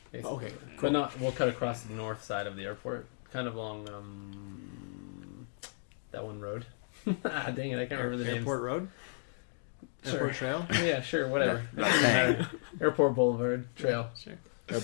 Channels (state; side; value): silent; right; digital silence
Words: Basically. Okay, But not. We'll cut across the north side of the airport, kind of along that one road. Dang it, I can't remember the name. Airport Road? Sure. Airport Trail? Yeah, sure, whatever. Doesn't matter. Airport Boulevard Trail. Sure.